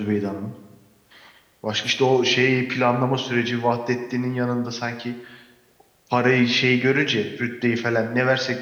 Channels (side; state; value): both; identical; correlation 1.00